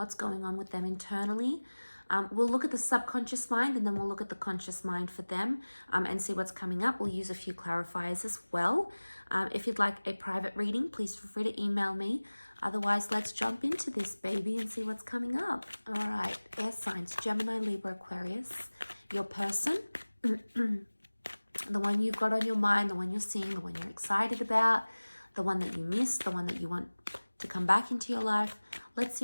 going on with them internally. We'll look at the subconscious mind and then we'll look at the conscious mind for them and see what's coming up. We'll use a few clarifiers as well. If you'd like a private reading, please feel free to email me. Otherwise, let's jump into this baby and see what's coming up. All right, air signs, Gemini, Libra, Aquarius. Your person, the one you've got on your mind, the one you're seeing, the one you're excited about, the one that you miss, the one that you want to come back into your life. Let's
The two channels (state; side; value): inverted; both; correlation -1.00